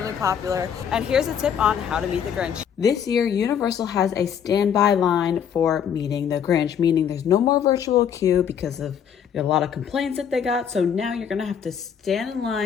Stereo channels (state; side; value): quieter; right; 8.2 dB